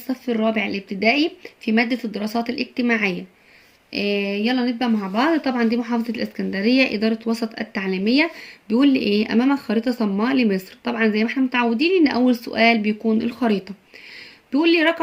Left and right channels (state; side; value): identical; both; correlation 1.00